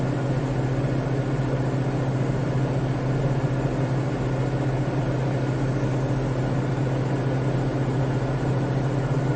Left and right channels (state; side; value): identical; both; correlation 1.00